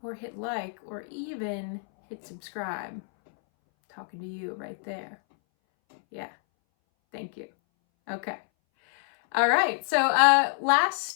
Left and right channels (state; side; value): silent; right; 60 dB below the other